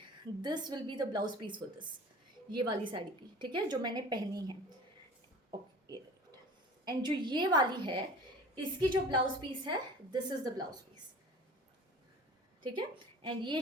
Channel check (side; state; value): both; normal; correlation 0.42